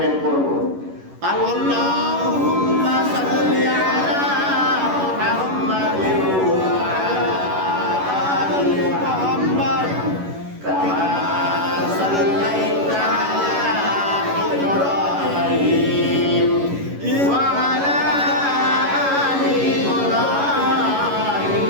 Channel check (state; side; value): late; left; 11 ms